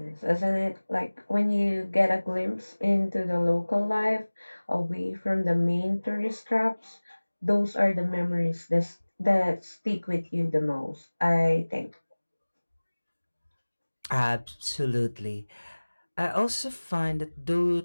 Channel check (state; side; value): inverted; both; correlation -1.00